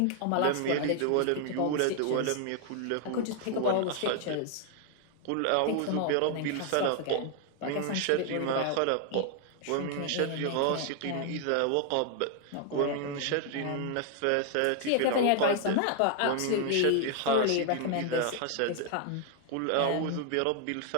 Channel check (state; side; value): different; both; correlation 0.00